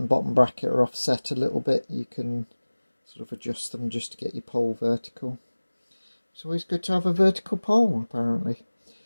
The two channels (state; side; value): inverted; both; correlation -1.00